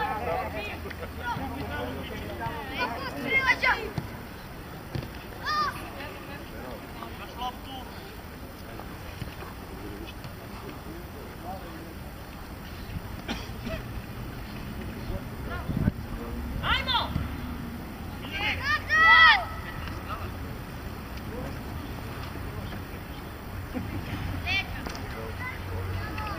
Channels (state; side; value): identical; both; correlation 1.00